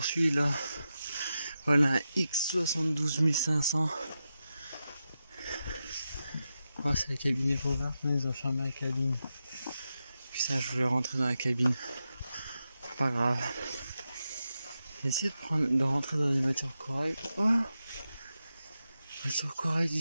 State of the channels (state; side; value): inverted; both; correlation -0.89